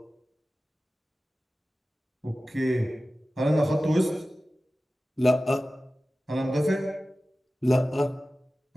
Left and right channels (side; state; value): both; normal; correlation 0.96